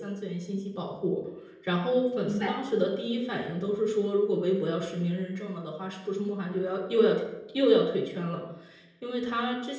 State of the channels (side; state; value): both; identical; correlation 1.00